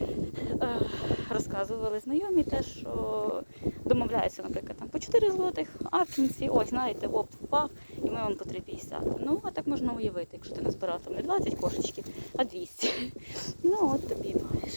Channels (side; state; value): both; inverted; correlation -1.00